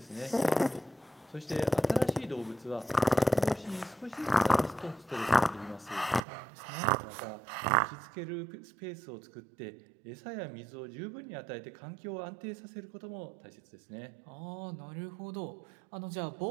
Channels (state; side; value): drops out; left; at 6.2 s